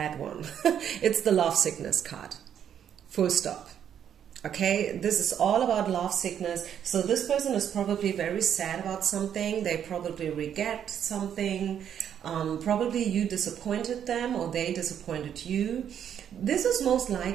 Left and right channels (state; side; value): quieter; left; 9.1 dB